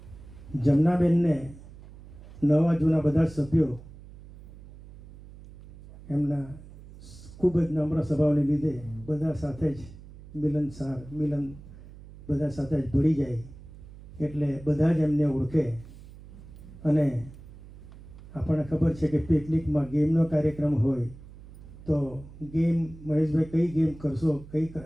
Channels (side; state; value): right; noise; hum, 18 dB below the sound